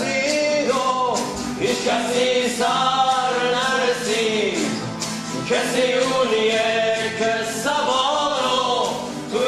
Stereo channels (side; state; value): both; identical; correlation 1.00